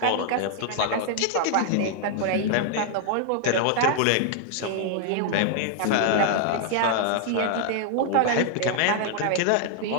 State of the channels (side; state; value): both; different; correlation 0.00